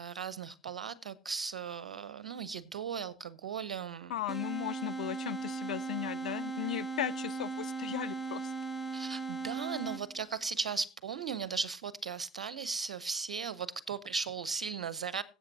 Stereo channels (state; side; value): normal; both; correlation 0.33